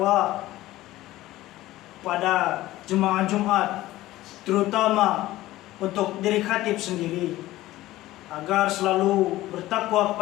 pada jemaah Jumat, terutama untuk diri khatib sendiri, agar selalu bertakwa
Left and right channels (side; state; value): right; quieter; 16.3 dB